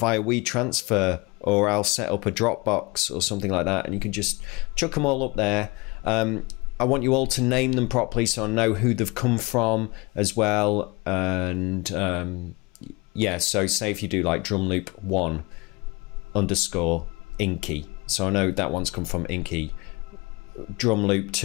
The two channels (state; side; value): quieter; right; 25.5 dB